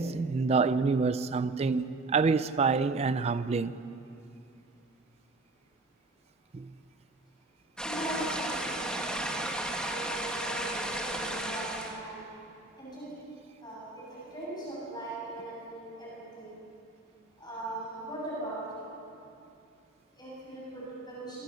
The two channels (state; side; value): quieter; left; 3.3 dB